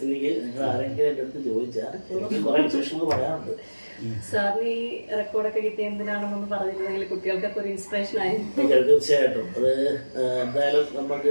നിങ്ങൾ ആരെങ്കിലും എൻ്റെ അടുത്ത് ചോദിച്ചാൽ എനിക്ക് കുറേ വിശേഷങ്ങൾ പറയാറുണ്ട്. സാറിന് ഈ റെക്കോർഡൊക്കെ കിട്ടിയ എന്തിനാണെന്നൊന്ന് പറഞ്ഞിരുന്നെങ്കിൽ കുട്ടികൾക്കൊക്കെ ഒരു ഇൻസ്പിറേഷൻ ആയി. തീർച്ചയായിട്ടും അത് എന്തായാലും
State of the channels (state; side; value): inverted; both; correlation -1.00